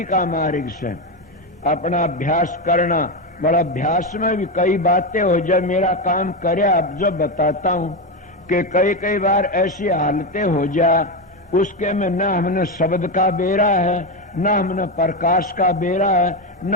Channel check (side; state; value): both; normal; correlation 0.11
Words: का मार्ग से अपना अभ्यास करना। बड़ा अभ्यास में भी कई बातें हो जाए, मेरा काम करे अब जो बताता हूं कि कई बार ऐसी हालतें हो जा उसके में न हमने शब्द का बेरा है, न हमने प्रकाश का बेरा है, न